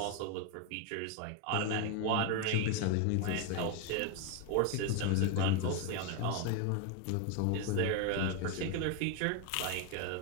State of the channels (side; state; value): both; different; correlation 0.01